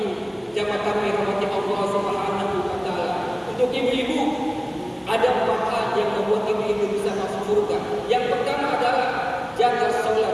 jamaah tarawih rahmati Allah Subhanahu wa taala. Untuk ibu-ibu, ada 4 hal yang membuat ibu-ibu bisa masuk surga. Yang pertama adalah jaga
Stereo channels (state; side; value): identical; both; correlation 1.00